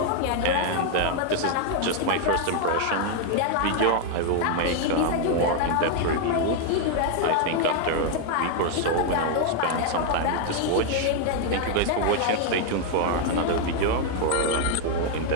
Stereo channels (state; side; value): different; both; correlation 0.00